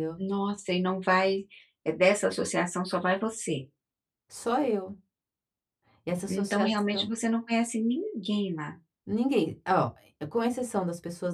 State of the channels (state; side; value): identical; both; correlation 1.00